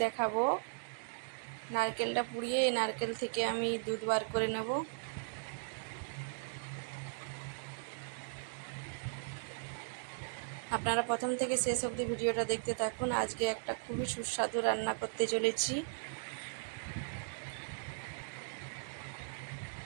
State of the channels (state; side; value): silent; left; digital silence